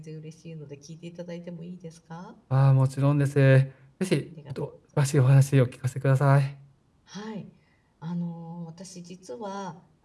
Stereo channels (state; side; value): identical; both; correlation 1.00